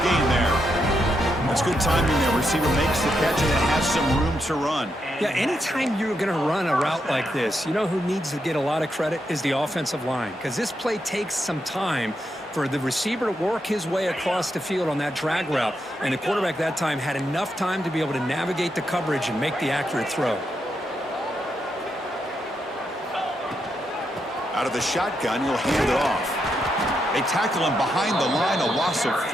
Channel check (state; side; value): normal; both; correlation 0.82